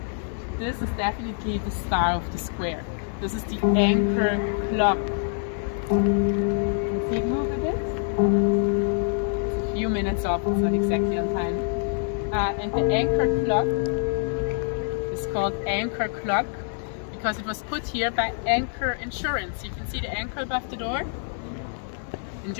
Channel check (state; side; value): silent; right; 61 dB below the other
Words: this is definitely the star of the square. This is the anchor clock. See it move a bit? It's a few minutes off, it's not exactly on time. And the anchor clock is called anchor clock because it was put here by Anchor Insurance. You can see the anchor above the door. In